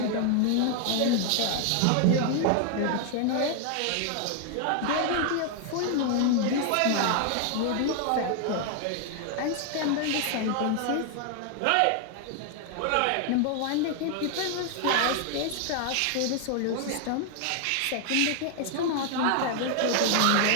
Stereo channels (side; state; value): both; different; correlation 0.00